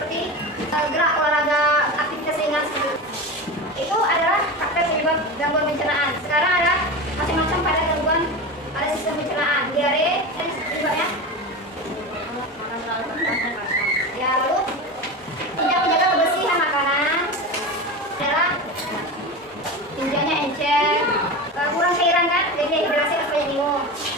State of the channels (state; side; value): normal; both; correlation 0.25